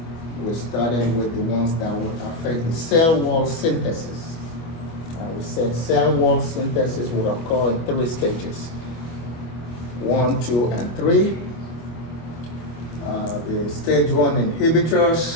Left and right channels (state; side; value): late; right; 25 ms